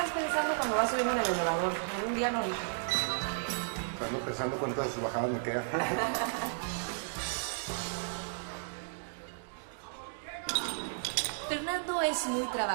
pensando cuando vas subiendo en el elevador? Un día no. Estamos pensando cuántas bajadas me quedan. Fernando es muy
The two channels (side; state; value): left; silent; digital silence